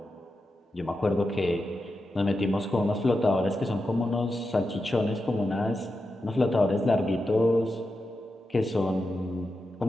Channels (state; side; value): normal; both; correlation 0.89